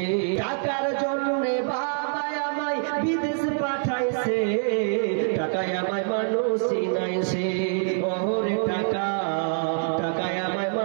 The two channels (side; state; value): left; silent; 57 dB below the other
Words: টাকার জন্যে বাবা আমায় বিদেশ পাঠাইছে টাকায় আমায় মানুষ চিনাইছে ওরে টাকা টাকায় আমায়